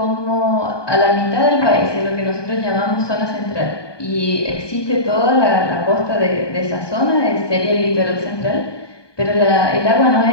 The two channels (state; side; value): late; right; 1.2 ms